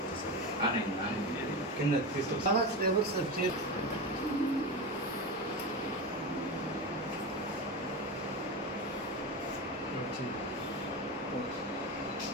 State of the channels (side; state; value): both; normal; correlation 0.21